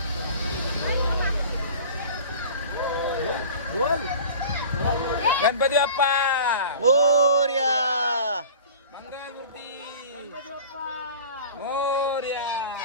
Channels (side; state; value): both; inverted; correlation -0.41